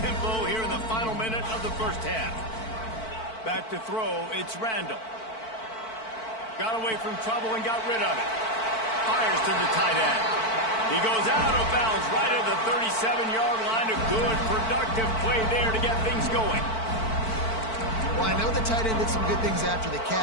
tempo here in the final minute of the 1st half. Back to throw, it's Randall. Got away from trouble and got rid of it. Fires to the tight end. He goes out of bounds right at the 37-yard line. A good, productive play there to get things going. Well, I know the tight end did some good things after the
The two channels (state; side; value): late; right; 4.5 ms